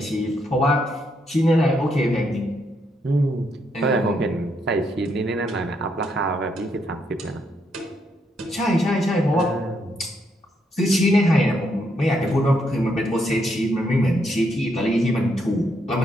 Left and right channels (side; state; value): both; normal; correlation 0.76